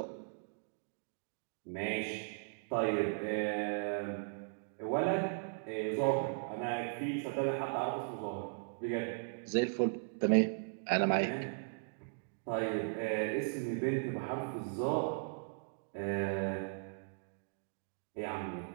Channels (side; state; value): left; silent; digital silence